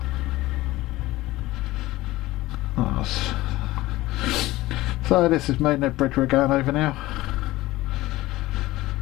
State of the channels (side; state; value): right; quieter; 17.9 dB